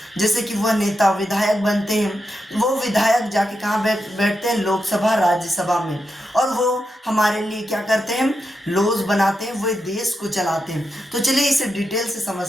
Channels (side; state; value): both; normal; correlation 0.87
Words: जैसे कि वह नेता विधायक बनते हैं। वो विधायक जाके कहाँ बैठते हैं? लोकसभा राज्यसभा में। और वो हमारे लिए क्या करते हैं? लॉज बनाते हैं, वो देश को चलाते हैं। तो चलिए इसे डिटेल से